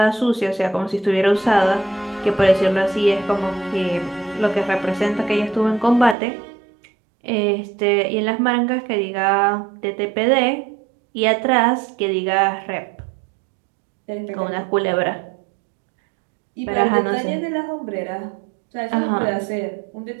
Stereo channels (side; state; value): left; drops out; at 6.2 s